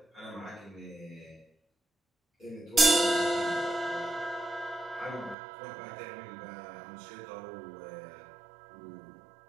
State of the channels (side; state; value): left; drops out; at 5.4 s